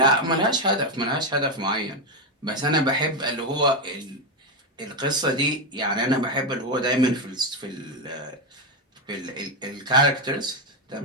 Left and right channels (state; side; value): normal; both; correlation 0.08